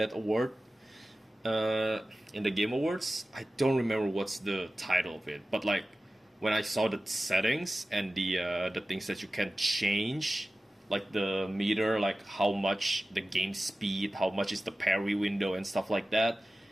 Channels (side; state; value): both; normal; correlation 0.95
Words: award in the Game Awards. I don't remember what's the title of it, but like when I saw the settings and the things that you can change, like the meter, like how much the game speed, how much is the parry window and stuff like that.